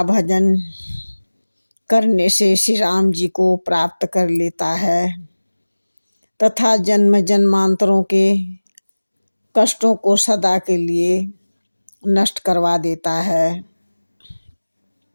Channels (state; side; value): inverted; both; correlation -1.00